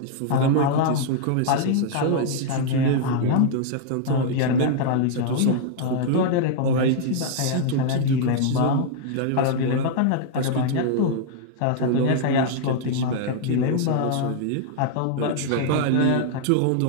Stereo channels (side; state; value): both; different; correlation -0.01